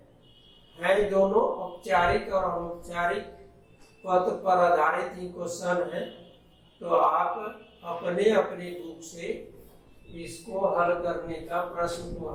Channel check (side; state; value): both; identical; correlation 1.00